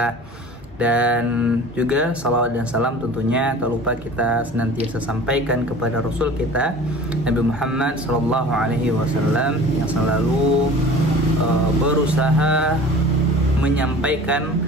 Dan juga salawat dan salam tentunya tak lupa kita senantiasa sampaikan kepada Rasul kita Nabi Muhammad SAW yang selalu berusaha menyampaikan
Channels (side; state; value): both; normal; correlation 0.42